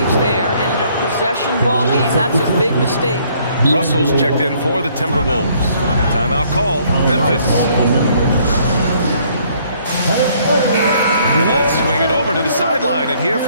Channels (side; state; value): both; inverted; correlation -0.64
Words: there. And in a possession ball game, that's a big mistake. Russell's checked in for the Timberwolves. Timeout call, Memphis. And let's swing it over to the sideline and hear